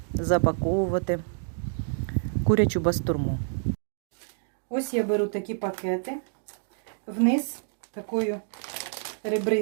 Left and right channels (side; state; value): left; silent; digital silence